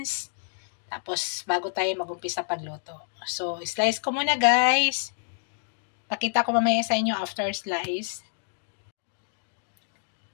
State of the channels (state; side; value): silent; right; digital silence